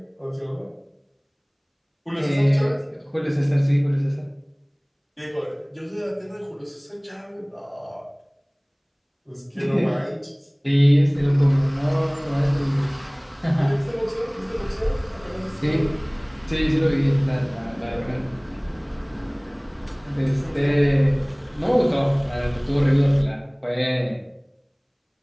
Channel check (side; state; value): both; identical; correlation 1.00